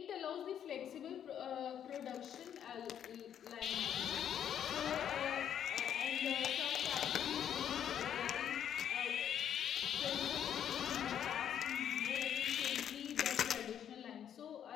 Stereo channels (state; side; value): quieter; right; 9.4 dB